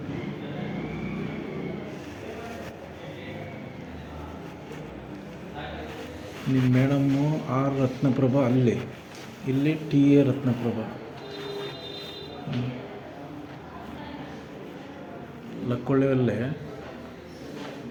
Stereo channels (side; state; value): both; identical; correlation 1.00